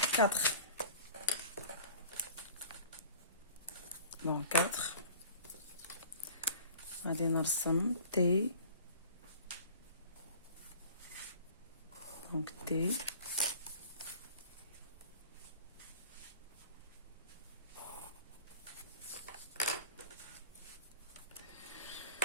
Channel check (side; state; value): both; inverted; correlation -0.45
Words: 4. دونك 4 غادي نرسم تي. دونك تي